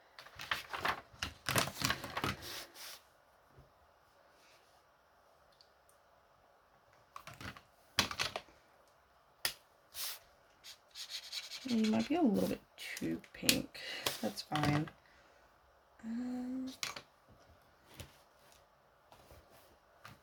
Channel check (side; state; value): both; identical; correlation 1.00